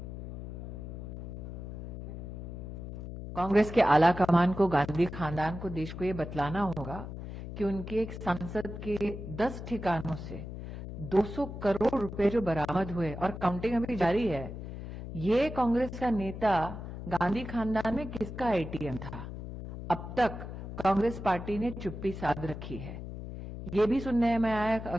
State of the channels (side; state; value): left; noise; hum, 9 dB below the sound